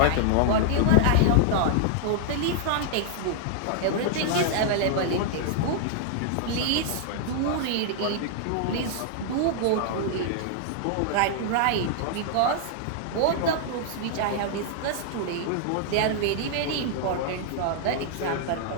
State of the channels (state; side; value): different; both; correlation -0.01